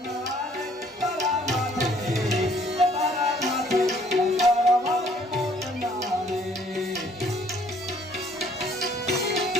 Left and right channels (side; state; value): both; normal; correlation 0.61